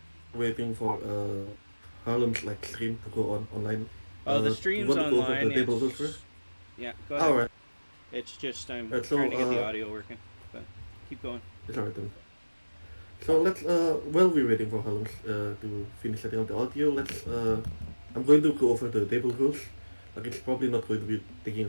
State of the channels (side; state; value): both; inverted; correlation -1.00